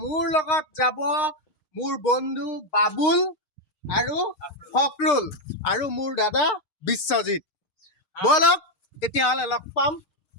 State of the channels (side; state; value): right; late; 6.9 ms